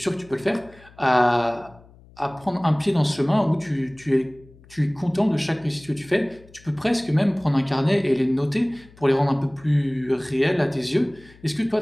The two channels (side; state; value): left; noise; hum, 25 dB below the sound